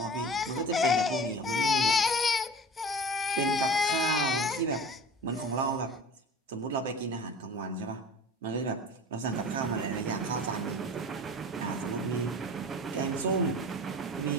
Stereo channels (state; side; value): normal; both; correlation 0.38